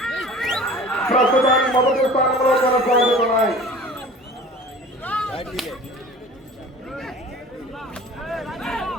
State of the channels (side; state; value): both; normal; correlation 0.42